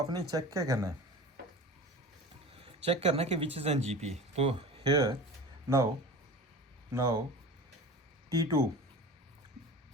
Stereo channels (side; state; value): both; normal; correlation 0.35